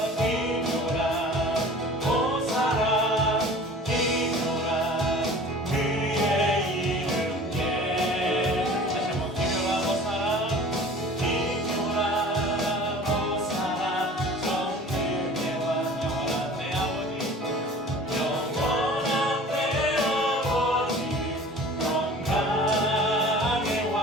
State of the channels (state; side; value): normal; both; correlation 0.44